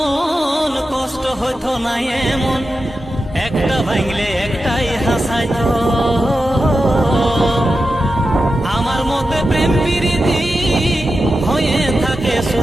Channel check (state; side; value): normal; both; correlation 0.91